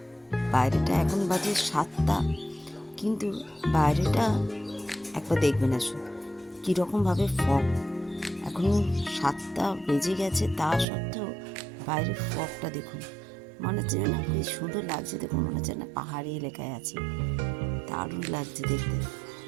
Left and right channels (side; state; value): left; drops out; at 10.9 s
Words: বাইরেটা এখন বাজে 7টা, কিন্তু বাইরেটা একবার দেখবেন আসুন কীরকমভাবে ফগ। এখন 7টা বেজে গেছে, তা সত্ত্বেও বাইরের ফগটা দেখুন, মনে হচ্ছে না খুব সুন্দর লাগছে। দেখুন মনে হচ্ছে না পাহাড়ি এলাকায় আছি, দারুণ লাগছে দেখতে।